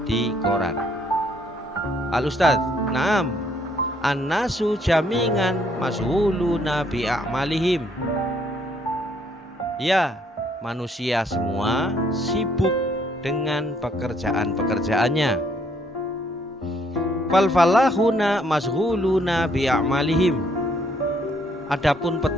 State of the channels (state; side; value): normal; both; correlation 0.68